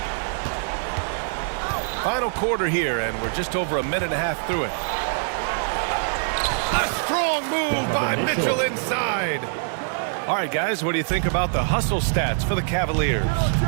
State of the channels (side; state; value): left; silent; 56 dB below the other